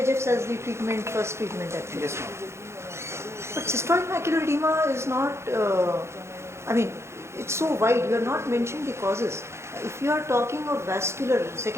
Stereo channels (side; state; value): left; late; 0.13 ms